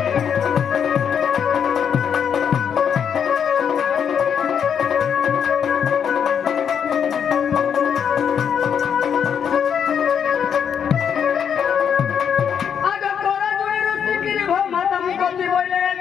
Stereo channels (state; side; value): quieter; right; 7.8 dB